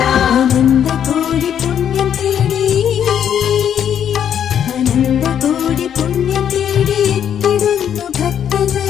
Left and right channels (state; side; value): quieter; right; 9.2 dB